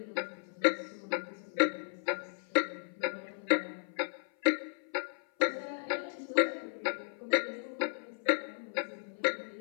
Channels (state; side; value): silent; right; 55 dB below the other